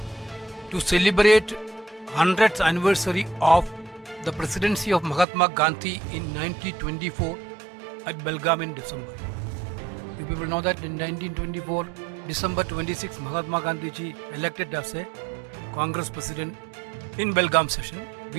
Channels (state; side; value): drops out; left; at 5.2 s